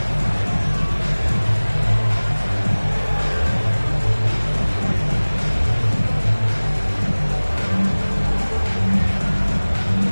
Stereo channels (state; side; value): inverted; both; correlation -1.00